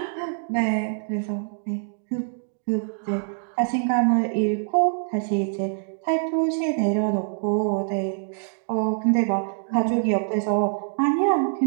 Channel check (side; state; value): left; silent; digital silence